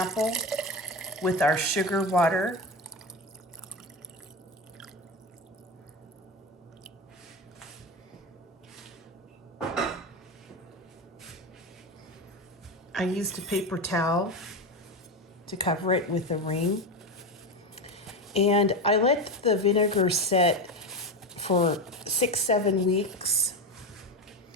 with our sugar water. I used a paper towel to cover it with a ring. And I let the vinegar set for 6-7 weeks.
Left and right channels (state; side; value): normal; both; correlation 0.18